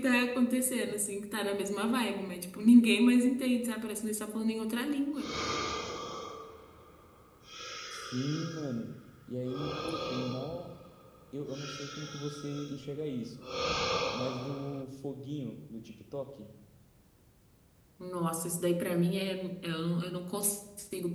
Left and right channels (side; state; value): both; identical; correlation 1.00